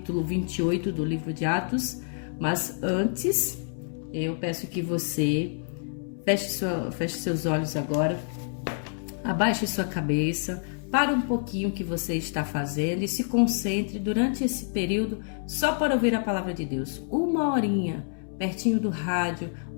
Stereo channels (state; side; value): silent; right; 60 dB below the other